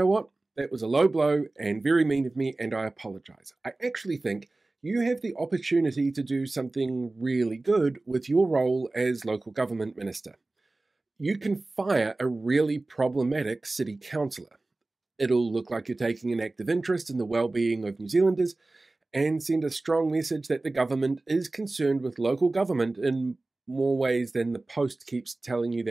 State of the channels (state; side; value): quieter; left; 3.1 dB